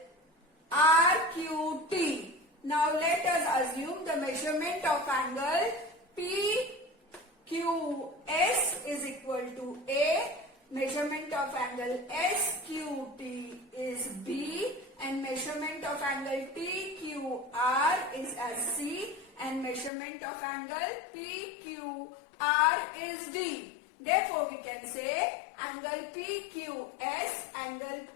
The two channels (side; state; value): right; drops out; at 19.9 s